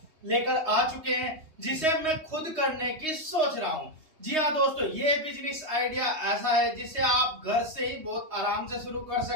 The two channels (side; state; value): left; late; 3.2 ms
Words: लेकर आ चुके हैं जिसे मैं खुद करने की सोच रहा हूं। जी हाँ दोस्तों, ये बिजनेस आइडिया ऐसा है जिसे आप घर से ही बहुत आराम से शुरू कर